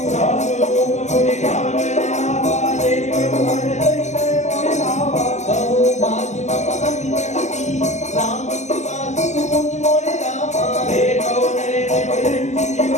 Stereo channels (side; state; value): right; late; 0.33 ms